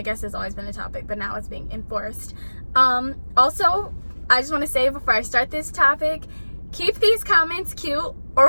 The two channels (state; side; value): inverted; both; correlation -1.00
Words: guess it's always been a topic, but now it's being enforced. Also, I just want to say before I start this topic, keep these comments cute or